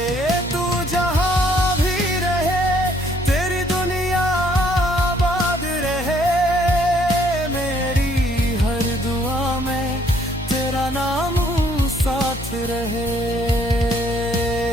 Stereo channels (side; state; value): both; normal; correlation 0.65